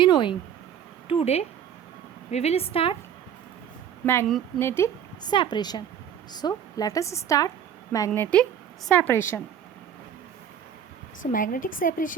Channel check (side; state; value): left; quieter; 8.9 dB